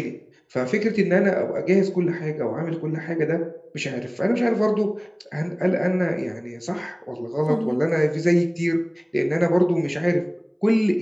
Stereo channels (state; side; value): identical; both; correlation 1.00